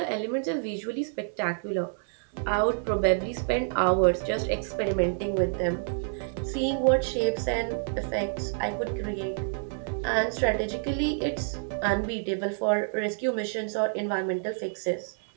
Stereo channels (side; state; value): left; silent; 58 dB below the other